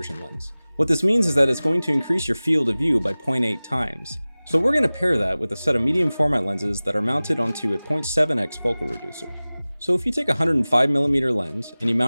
lens. What this means is that it's going to increase your field of view by 0.8 times. So we're going to pair that with a set of medium format lenses that are mounted onto a 0.7x focal reducer. So if you take a 105mm lens and you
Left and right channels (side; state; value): both; inverted; correlation -0.98